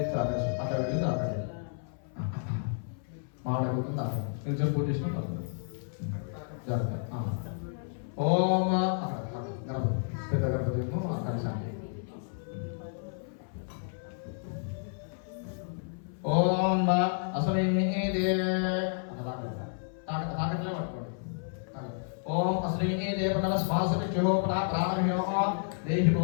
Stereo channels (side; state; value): right; silent; 57 dB below the other